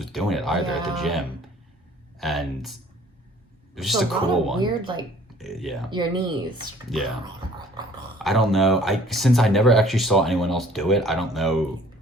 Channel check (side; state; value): both; normal; correlation 0.54